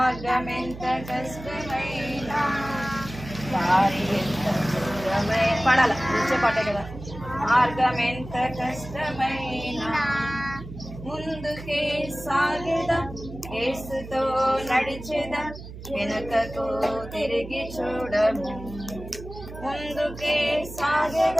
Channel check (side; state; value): right; noise; hum, 13 dB below the sound